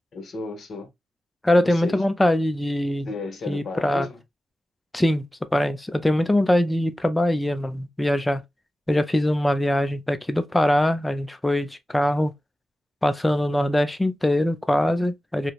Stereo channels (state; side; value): normal; both; correlation 0.95